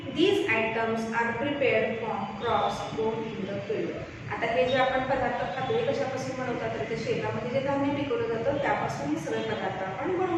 These items are prepared from crops grown in the field. आता हे जे आपण पदार्थ खातो हे कशापासून बनवतात? तर ते शेतामध्ये जे धान्य पिकवलं जातं त्यापासून हे सगळे पदार्थ आपण बनवू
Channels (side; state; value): both; identical; correlation 1.00